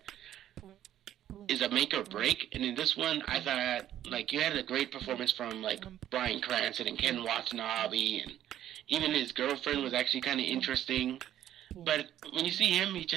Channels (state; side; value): quieter; left; 11.8 dB